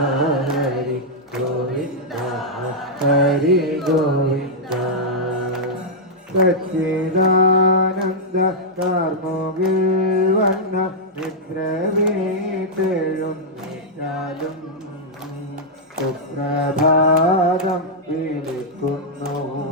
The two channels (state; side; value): normal; both; correlation -0.06